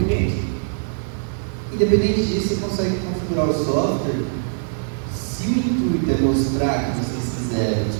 cliente. Independente disso, você consegue configurar o software. Se o intuito é mostrar que vocês fizeram o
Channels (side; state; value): left; silent; digital silence